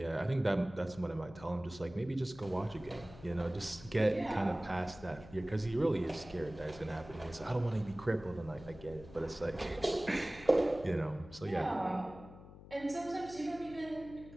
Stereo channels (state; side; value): noise; left; hum, 17 dB below the sound